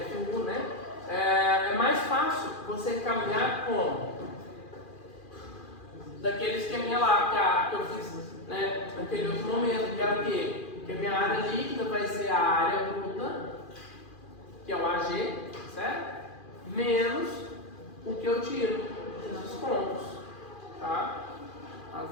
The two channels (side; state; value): right; late; 2.4 ms